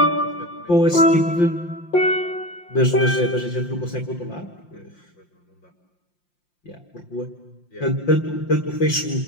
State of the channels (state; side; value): late; right; 5.7 ms